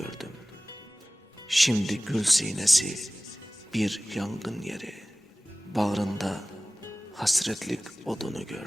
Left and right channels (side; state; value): both; normal; correlation 0.97